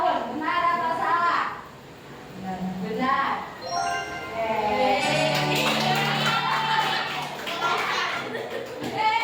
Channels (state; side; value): identical; both; correlation 1.00